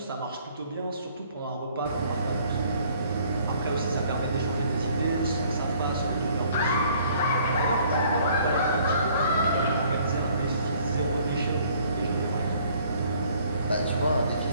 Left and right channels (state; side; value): inverted; both; correlation -0.59